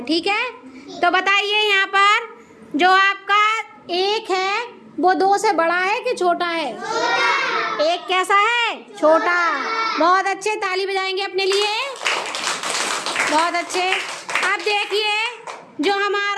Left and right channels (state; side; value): identical; both; correlation 1.00